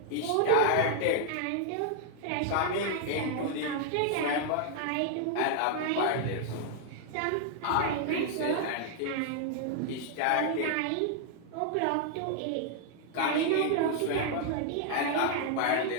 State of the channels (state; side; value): different; both; correlation 0.00